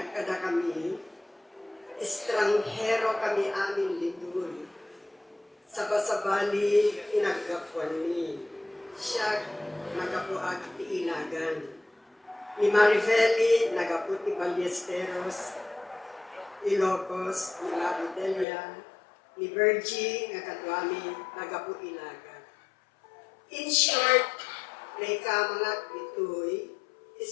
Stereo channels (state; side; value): drops out; right; at 18.4 s